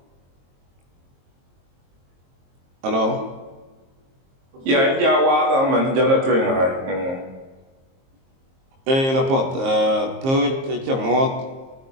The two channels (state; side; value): late; left; 22 ms